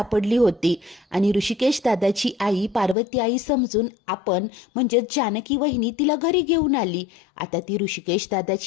होती आणि ऋषिकेश दादाची आई पार्वती आई समजून आपण म्हणजे जानकी वहिनी तिला घरी घेऊन आली. आता ती ऋषिकेश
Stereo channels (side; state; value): right; drops out; at 3.0 s